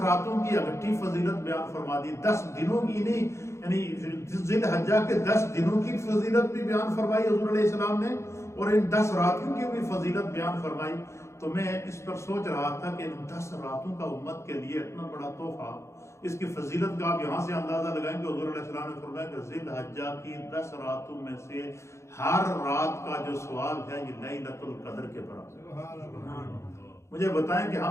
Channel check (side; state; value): right; late; 0.14 ms